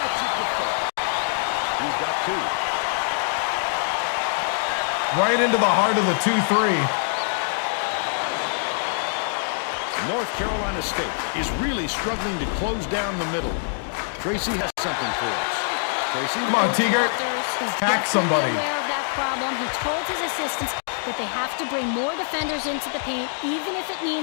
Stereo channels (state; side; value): silent; right; digital silence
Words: gets it to fall. He's got 2. right into the heart of the 2-3. North Carolina State is really struggling to close down the middle. Tracy has something for us. Tracy? Come on, Teager. Hack somebody. Aware of that problem. He told his assistants that they have to bring more defenders into the paint, even if it